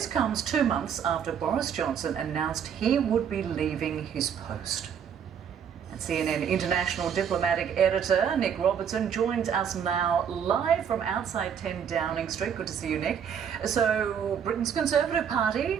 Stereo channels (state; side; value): quieter; left; 7.9 dB